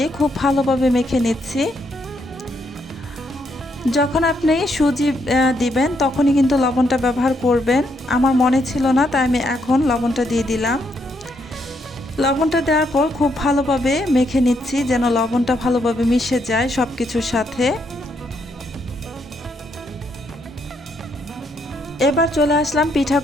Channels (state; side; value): normal; both; correlation 0.75